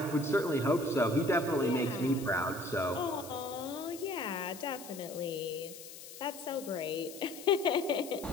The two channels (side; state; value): left; noise; hiss, 14 dB below the sound